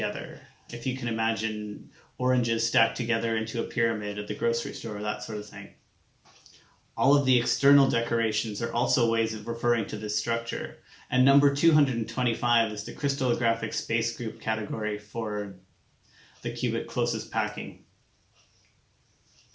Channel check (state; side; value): identical; both; correlation 1.00